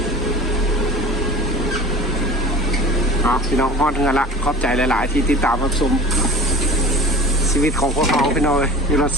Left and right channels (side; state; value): both; normal; correlation 0.40